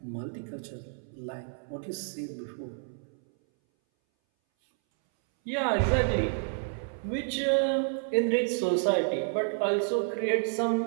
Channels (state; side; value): silent; left; 58 dB below the other